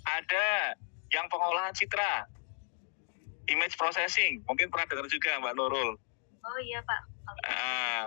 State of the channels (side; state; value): right; silent; 55 dB below the other